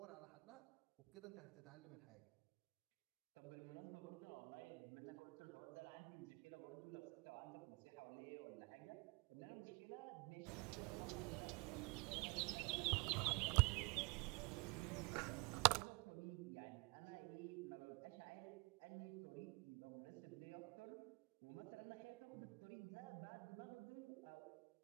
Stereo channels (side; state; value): left; quieter; 28.4 dB